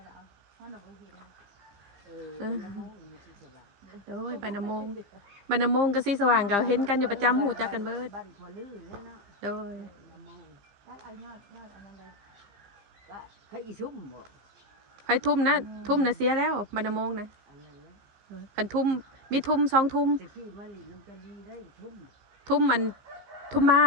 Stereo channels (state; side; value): late; left; 15 ms